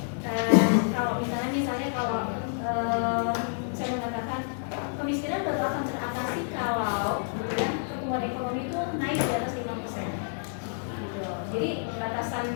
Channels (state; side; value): silent; right; digital silence